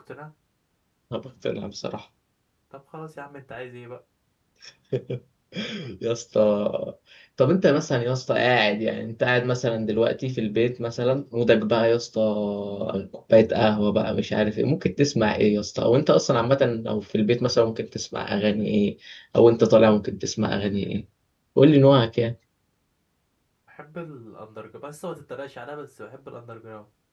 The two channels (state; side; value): identical; both; correlation 1.00